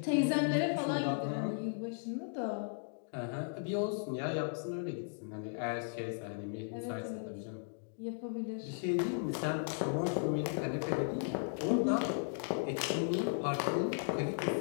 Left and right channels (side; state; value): right; silent; digital silence